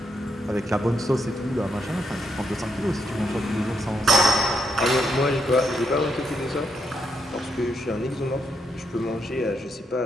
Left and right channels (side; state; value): both; normal; correlation 0.79